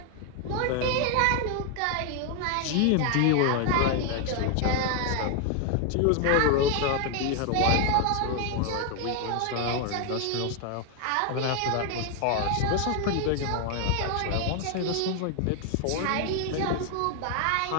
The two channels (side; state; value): both; different; correlation 0.01